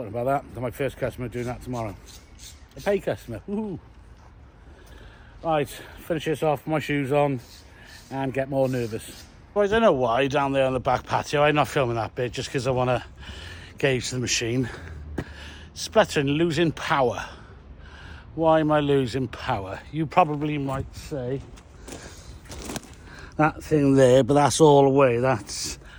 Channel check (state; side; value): identical; both; correlation 1.00